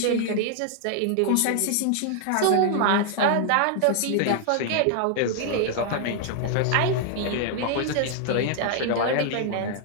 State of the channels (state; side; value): different; both; correlation 0.00